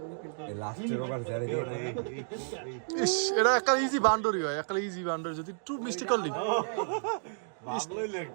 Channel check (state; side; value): silent; left; digital silence